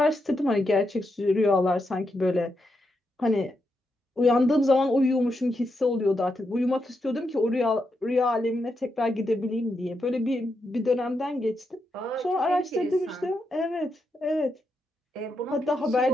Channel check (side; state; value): both; normal; correlation 0.83